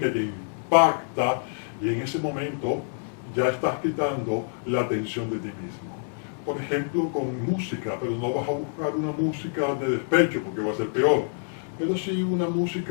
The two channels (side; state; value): right; silent; digital silence